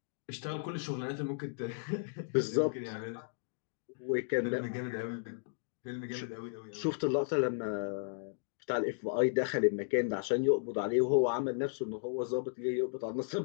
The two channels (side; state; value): right; silent; digital silence